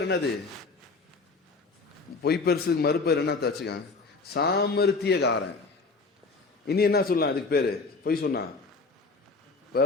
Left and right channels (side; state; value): right; quieter; 4.0 dB